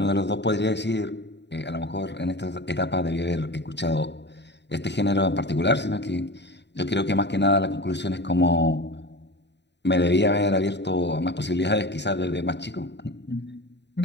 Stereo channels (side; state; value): right; late; 0.50 ms